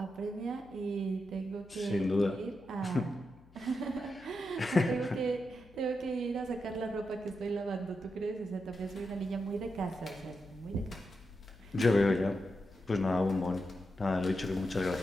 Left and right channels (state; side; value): noise; left; hum, 25 dB below the sound